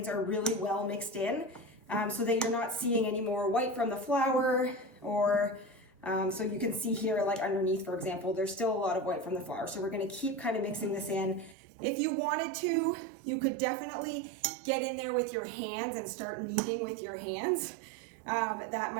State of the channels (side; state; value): left; drops out; at 11.6 s